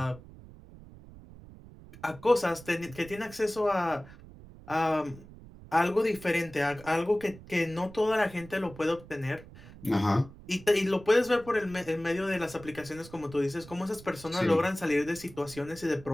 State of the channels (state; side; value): noise; right; rumble, 19 dB below the sound